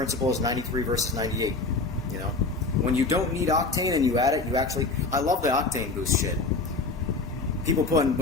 as 93 versus 98. You know, when you don't need octane and you add it, you actually. I love the octane boost shit. People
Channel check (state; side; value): quieter; right; 3.6 dB